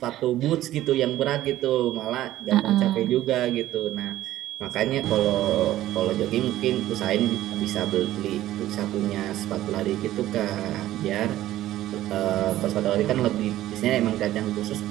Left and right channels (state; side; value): quieter; left; 14.3 dB